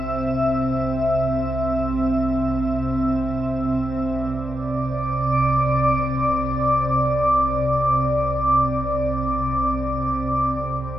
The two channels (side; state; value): both; normal; correlation 0.87